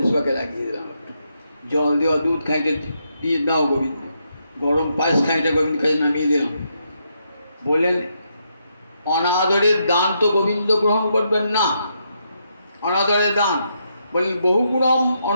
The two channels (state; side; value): inverted; both; correlation -0.79